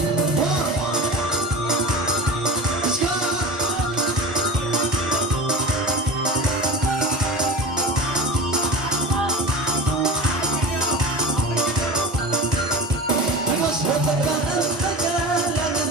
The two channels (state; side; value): normal; both; correlation 0.30